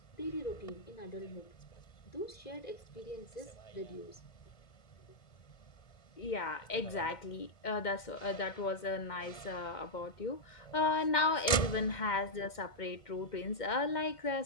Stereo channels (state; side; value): late; right; 1.7 ms